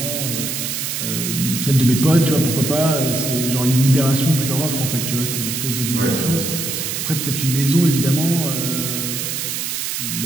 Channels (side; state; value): right; noise; hiss, 3 dB below the sound